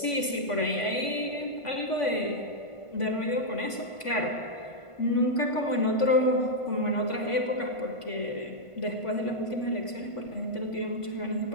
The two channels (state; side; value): late; right; 1.5 ms